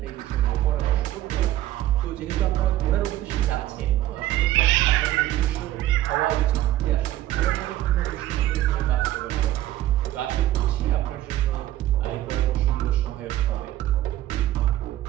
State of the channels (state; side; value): quieter; left; 13.9 dB